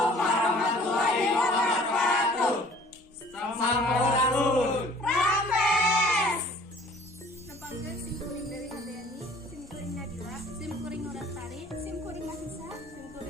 warahmatullahi wabarakatuh. Sampurasun. Rampes. Nampangkeun simkuring dari Hadayani, simkuring Nadila, simkuring Nurastari, simkuring Mahisa,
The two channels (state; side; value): normal; both; correlation 0.52